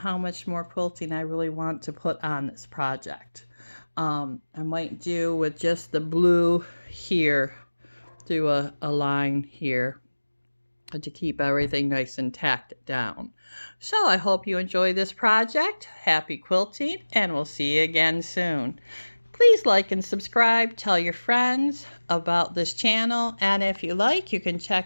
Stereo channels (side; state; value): both; inverted; correlation -1.00